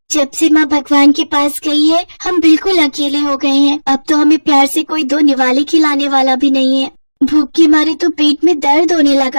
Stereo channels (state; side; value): inverted; both; correlation -1.00